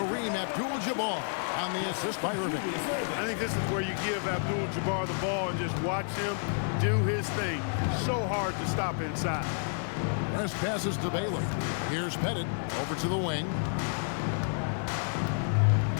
Abdul-Jabbar on the assist by Irving. I think this is where you give Abdul-Jabbar the ball and just watch him do his thing. So hard to stop inside. West passes to Baylor. Here's Pettit over to the wing.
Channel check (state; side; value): silent; right; digital silence